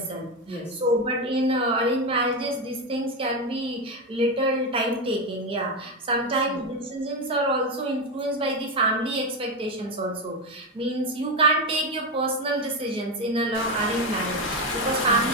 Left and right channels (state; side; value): normal; both; correlation 0.11